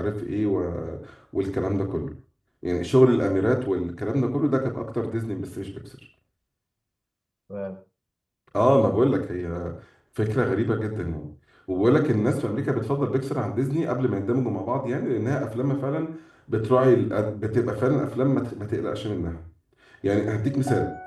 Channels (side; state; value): both; identical; correlation 1.00